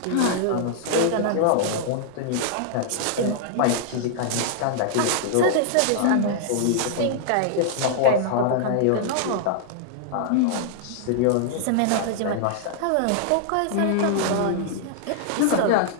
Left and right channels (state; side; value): different; both; correlation -0.01